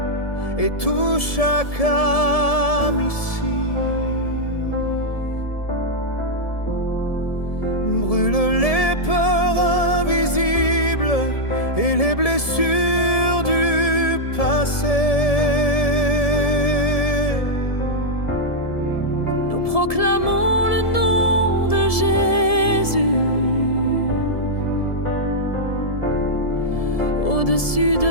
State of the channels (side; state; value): right; late; 1.7 ms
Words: et touche chaque âme ici. Brûle les peurs invisibles et les blessures du passé. Nous proclamons le nom de Jésus au-dessus